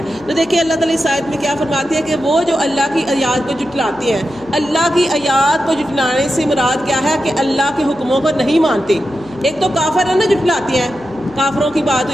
تو دیکھیں اللہ تعالیٰ اس آیت میں کیا فرماتے ہیں کہ وہ جو اللہ کی آیات کو جھٹلاتے ہیں، اللہ کی آیات کو جھٹلانے سے مراد کیا ہے کہ اللہ کے حکموں کو نہیں مانتے۔ ایک تو کافر ہے نا جھٹلاتے ہیں، کافروں کی بات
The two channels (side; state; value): left; noise; hum, 24 dB below the sound